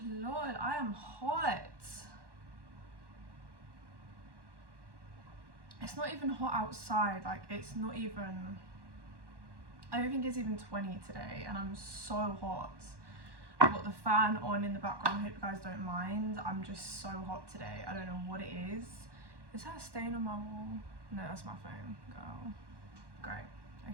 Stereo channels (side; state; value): left; late; 1.1 ms